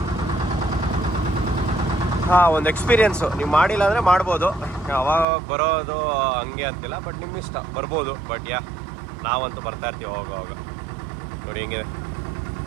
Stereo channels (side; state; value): left; drops out; at 5.2 s